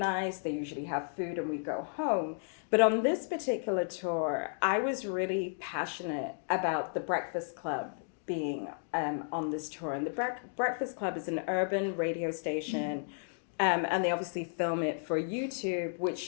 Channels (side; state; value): right; silent; digital silence